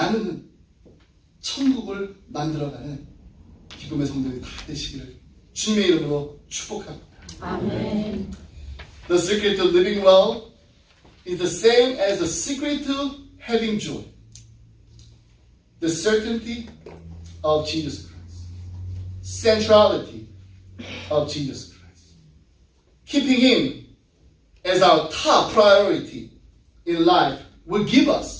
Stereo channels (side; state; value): both; identical; correlation 1.00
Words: 천국을 만들어가는 기쁨의 성도들이 다 되시기를 주님의 이름으로 축복합니다. 아멘. The secret to living well is the same as the secret to having joy. The certainty of Jesus Christ. Centrality of Jesus Christ. Keeping Him as our top priority in life will give